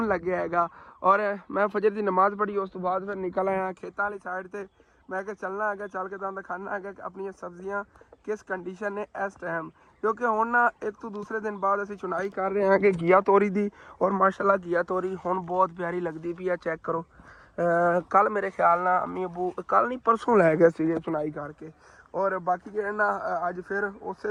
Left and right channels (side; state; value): both; identical; correlation 1.00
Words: लग्या हैगा। और मैं फजर की नमाज़ पढ़ी, उस तो बाद फिर निकल आया खेतों वाली साइड से। मैं क्या चलना है, चल के तुहानू दिखाना है कि अपनी सब्जियां किस कंडीशन ने इस टाइम, क्योंकि हुण ना एक तो दूसरे दिन बाद असीं चुनाई कर रहे हैं कि घिया तोरी दी। और माशाल्लाह घिया तोरी हुण बहुत प्यारी लगती पई है। चैक करो, कल मेरे ख्याल ना अम्मी अबू कल नहीं परसों लै गए सी चुनाई करके। और बाकी जो ना अज फिर उस